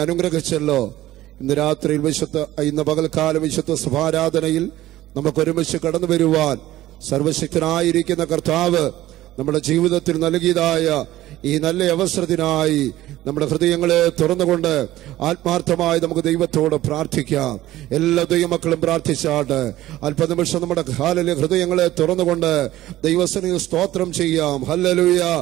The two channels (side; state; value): left; quieter; 15.2 dB